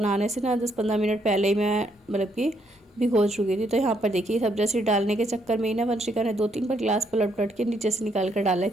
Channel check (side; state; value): both; normal; correlation 0.73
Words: से ना 10-15 मिनट पहले ही मैं मतलब कि भिगो चुकी थी। तो यहाँ पर देखिए सब्जा सीड डालने के चक्कर में ही ना वंशिका ने 2-3 बार गिलास पलट पलट के नीचे से निकाल कर डाला है,